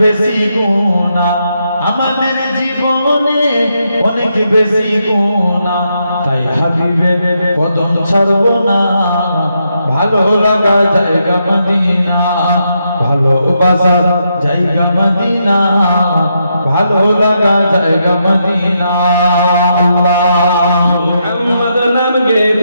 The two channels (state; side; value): inverted; both; correlation -0.81